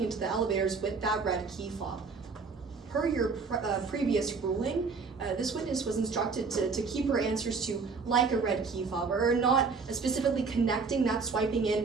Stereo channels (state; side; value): quieter; left; 4.8 dB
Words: into the elevators with that red key fob. Per your previous ruling, this witness was instructed to keep her answers to like a red key fob, or not specifically connecting that swiping in